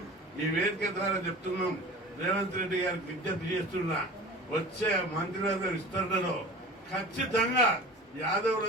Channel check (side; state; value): both; normal; correlation 0.38